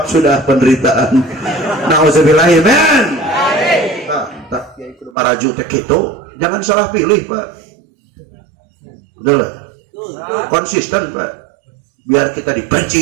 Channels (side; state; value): left; drops out; at 5.2 s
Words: sudah penderitaan nauzubillahi men tak ya itu maraju teh kitu jangan salah pilih Pak udah konsisten Pak biar kita